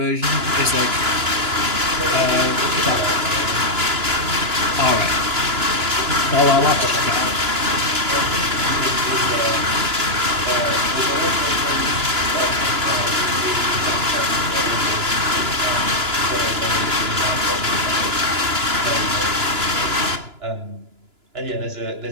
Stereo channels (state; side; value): late; left; 2.9 ms